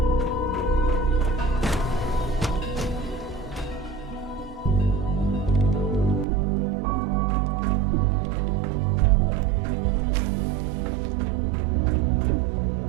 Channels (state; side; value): drops out; left; at 6.2 s